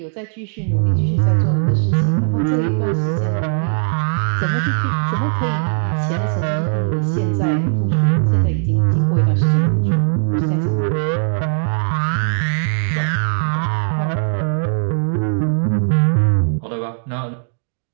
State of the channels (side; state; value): left; silent; digital silence